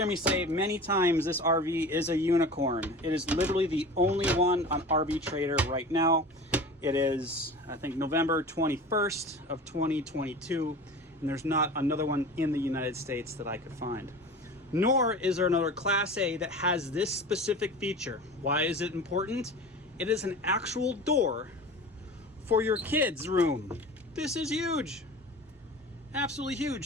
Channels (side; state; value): both; normal; correlation 0.36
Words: me say many times this RV is a unicorn. It is literally the only one on RV Trader right now. It is, I think, November 21st of 2022, and there's not another one in the United States that I could find. Nor is there another Class A that has this specific feature. Why is it important? It is an actual door for your kids' room. This is huge. Absolutely